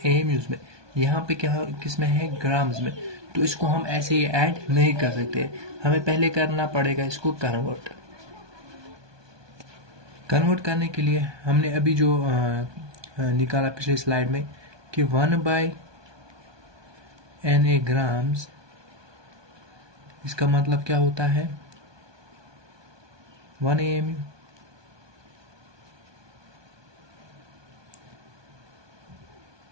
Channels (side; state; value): left; late; 1.2 ms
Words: में। यहाँ पे क्या किस में है, ग्राम्स में। तो इसको हम ऐसे ही ऐड नहीं कर सकते, हमें पहले करना पड़ेगा इसको कन्वर्ट। कन्वर्ट करने के लिए हमने अभी जो निकाला पिछले स्लाइड में कि 1/NA ग्राम्स, इसका मतलब क्या होता है 1 AMU।